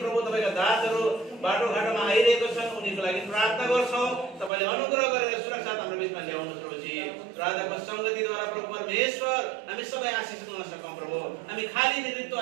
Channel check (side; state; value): left; drops out; at 4.5 s